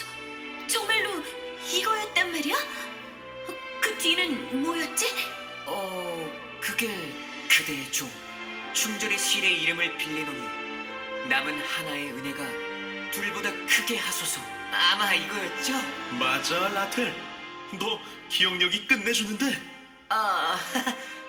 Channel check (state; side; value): identical; both; correlation 1.00